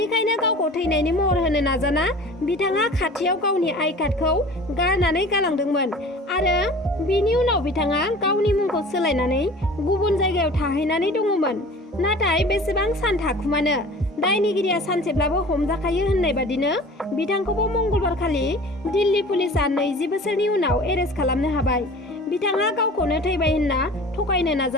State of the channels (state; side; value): normal; both; correlation 0.42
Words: गावखौ थैनायनि महर होनो नाजाना बिथाङा खाथियाव गावनि आइ कार्डखौ गारनानै गालांदोंमोन। आरो बिनि उनाव बिथाङा गावनि मुंखौ सोलायनानै गुबुन जायगायाव थाहैनानै दङमोन। नाथाय बेसेबां सान थाखुमानो, दायनिगिरिया सानसेब्लाबो हमजाखायो होननाय बादिनो बिथांखौबो मंगलबारखालि दिल्ली पुलिसआ 20 बोसोरनि उनाव एरेस्ट खालामनो हाबाय। बिथाङा गावखौनो थैबाय होनना थगायनो